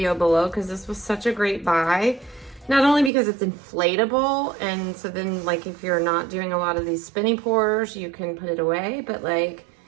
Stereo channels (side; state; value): left; drops out; at 3.1 s